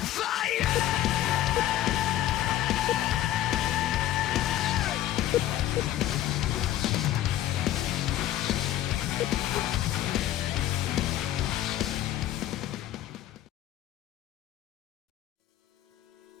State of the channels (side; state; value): right; quieter; 13.1 dB